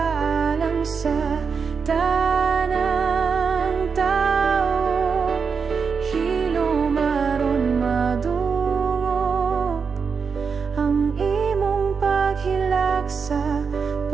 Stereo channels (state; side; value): quieter; left; 5.7 dB